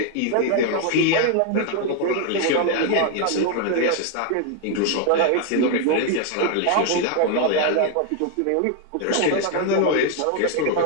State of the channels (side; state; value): both; different; correlation 0.01